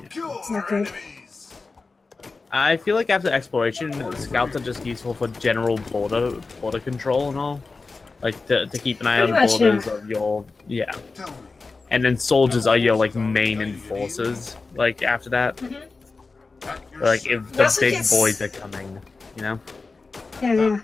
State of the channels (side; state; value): right; quieter; 4.0 dB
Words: kill not our good. enemies. I feel like after exploration, scouts are just useful for general border control and all. Like to keep an eye on Pretty much, borders of your Tell me. and then soldiers are your like main enforcers. Like after that, At your like if You the also big get boys are coming, you know. Yeah, yeah.